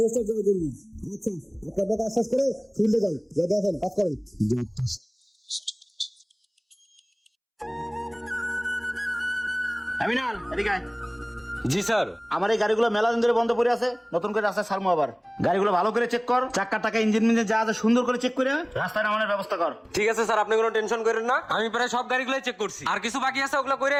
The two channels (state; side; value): identical; both; correlation 1.00